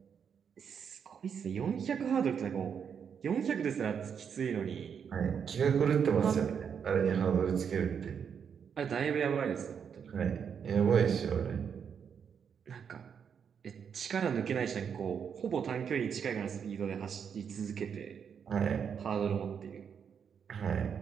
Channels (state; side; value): quieter; left; 7.2 dB